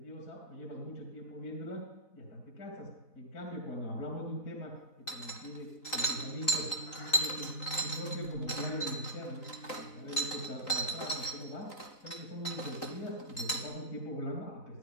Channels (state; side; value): late; right; 3.8 ms